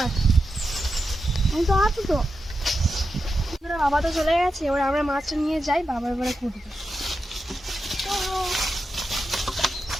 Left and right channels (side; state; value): both; normal; correlation 0.89